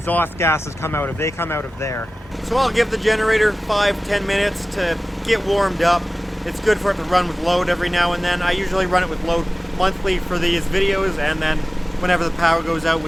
gases come out of. They come out of there. So I'll give the generator 5-10 minutes to get warmed up. It's good for it to run with load every now and then. I usually run it with load monthly for these videos, and then whenever the power goes out,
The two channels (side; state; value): both; normal; correlation 0.96